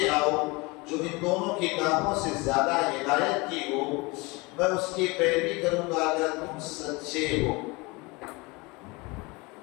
آؤ جو ان دونوں کتابوں سے زیادہ ہدایت کی ہو، میں اس کی پیروی کروں گا اگر تم سچے ہو.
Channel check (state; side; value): quieter; right; 25.4 dB